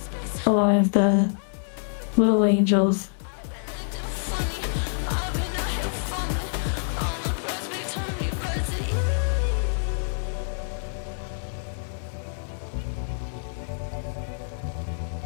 a lot of the little angels.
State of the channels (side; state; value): right; silent; digital silence